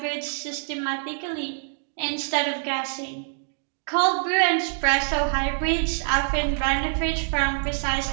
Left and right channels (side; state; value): left; silent; digital silence